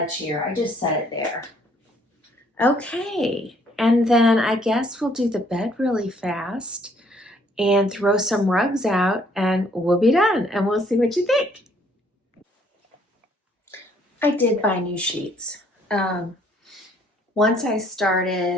here, I just set it there. Okay. And then I guess we'll do the bed really fast and throw some rugs out and we'll be done. And we'll see what you think. I did buy new sheets. Once I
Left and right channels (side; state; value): both; normal; correlation 0.63